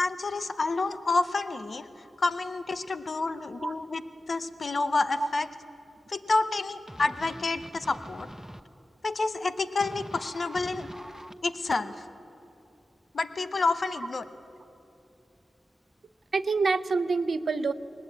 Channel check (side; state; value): both; normal; correlation 0.92